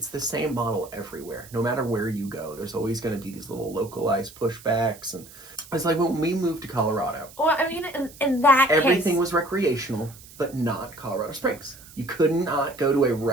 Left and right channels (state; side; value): noise; right; hiss, 20 dB below the sound